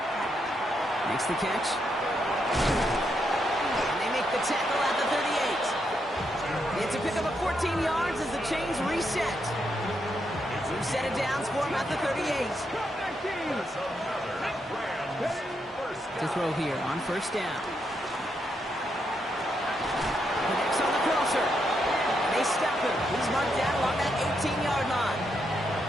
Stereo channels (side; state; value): both; normal; correlation 0.80